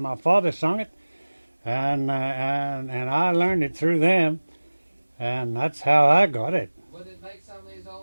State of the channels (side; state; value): both; inverted; correlation -1.00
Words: father sung it, and I learned it through them, and that's how I got it. Would it make some of these